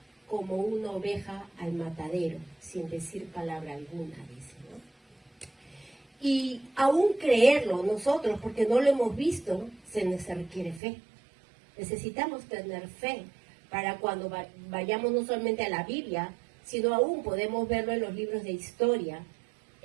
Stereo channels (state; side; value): drops out; left; at 10.8 s